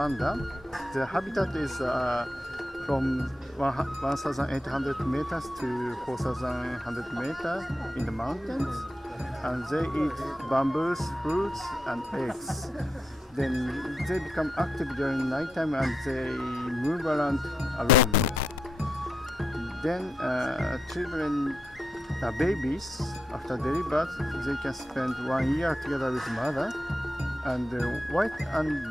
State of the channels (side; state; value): both; normal; correlation 0.83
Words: The habitat is from 1,800 meters to 4,100 meters in the mountains, and they eat bamboos, fruits, and eggs. Then they become active during nighttime and they move around alone. Then children, babies, after delivery, they can spend 1 year together with mother. And the white and